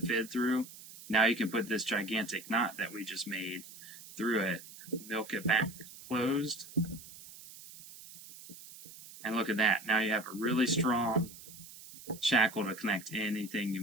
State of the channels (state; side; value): noise; right; hiss, 17 dB below the sound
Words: fid through? Now you can put this gigantic knot that we just made through it, milk it back closed, and look at that. Now you have a really strong shackle to connect anything